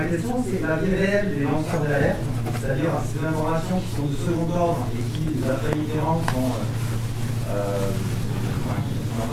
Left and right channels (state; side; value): identical; both; correlation 1.00